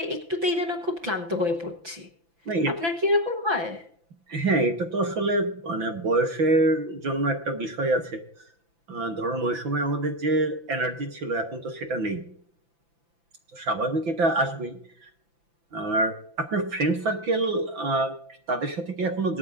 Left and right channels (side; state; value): left; late; 5.9 ms